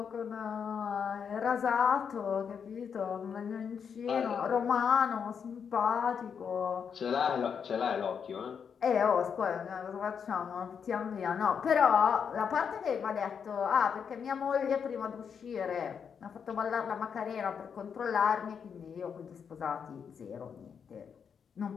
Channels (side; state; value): right; quieter; 6.9 dB